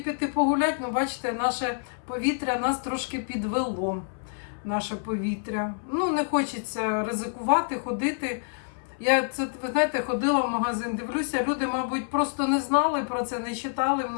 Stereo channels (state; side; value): silent; right; 60 dB below the other